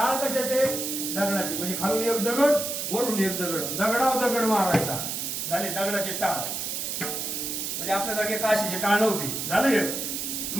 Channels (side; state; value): right; noise; hiss, 3 dB below the sound